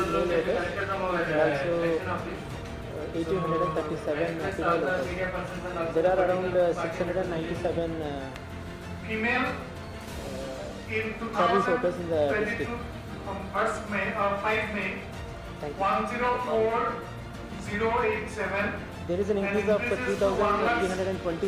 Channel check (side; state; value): both; identical; correlation 1.00